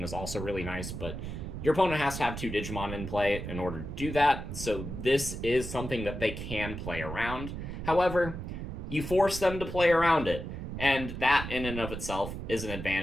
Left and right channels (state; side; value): noise; right; rumble, 7 dB below the sound